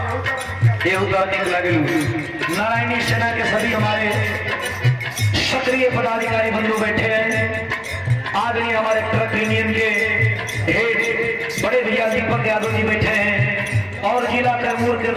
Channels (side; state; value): both; identical; correlation 1.00